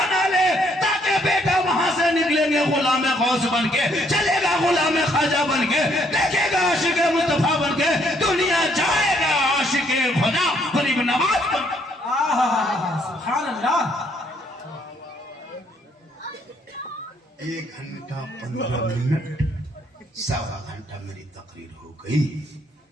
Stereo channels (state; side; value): normal; both; correlation 0.68